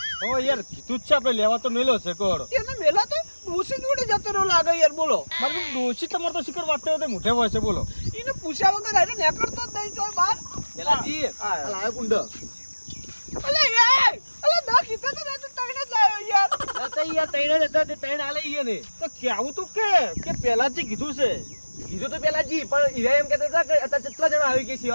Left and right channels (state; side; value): inverted; both; correlation -1.00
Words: ઓ યાર કીધું જ છે આપણે લેવા તો મેલો છે કોડ એને મેલા તો ડોસી જોડે જતો રહ્યો લાગે યાર બોલો મારે ડોશી તમારે તો શિખર વાત તો મોઢે હોય છે બોલો એને પૂછ્યા વગર આને નેકળતો જ નહીં જોય બાર પેલાજી આ લાયો કુંડ અલે યાર અલે ના કીધું તો ના તો તઈને જ લાવ્યો યાર નતા યાર તૈણ જ હતા તે તૈણ આલે ઈએ ને તો કેવું તું કે પહેલાથી કીધું છે કીધું તો પેલાજી પણ ઈરા એમ કહેતા હતા કે અત્યારે કેટલા જણા આવી કે